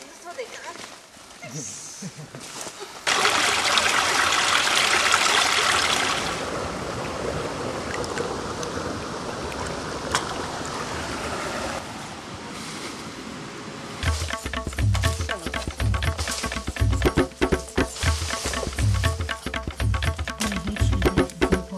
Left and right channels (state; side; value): identical; both; correlation 1.00